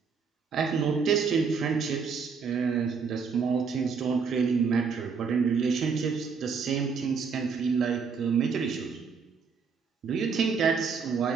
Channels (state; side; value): quieter; left; 5.6 dB